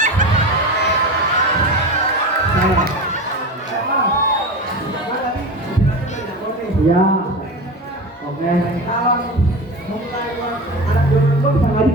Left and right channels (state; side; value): normal; both; correlation 0.27